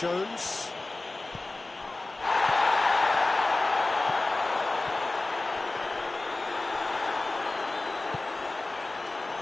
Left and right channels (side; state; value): right; quieter; 3.1 dB